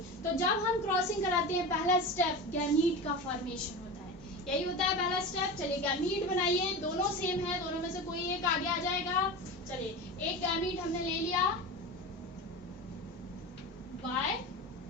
तो जब हम क्रॉसिंग कराते हैं पहला स्टेप गैमीट का फॉर्मेशन होता है, यही होता है पहला स्टेप। चलिए गैमीट बनाइए, दोनों सेम है, दोनों में से कोई एक आगे आ जाएगा। चलिए, एक गैमीट हमने ले लिया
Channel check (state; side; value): normal; both; correlation 0.27